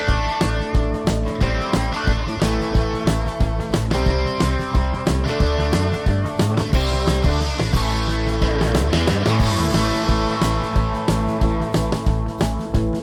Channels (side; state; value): both; identical; correlation 1.00